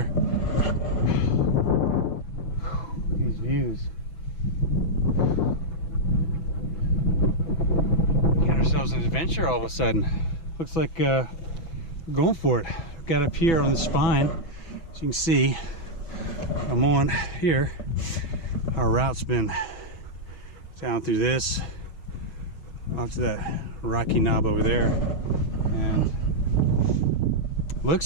These views. We got ourselves an adventure all of a sudden. Looks like we're going for it. We've got up here on the spine, as you can see. I'm on here. Our route's been down through this, up to that rocky knob over there, and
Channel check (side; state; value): right; late; 6.0 ms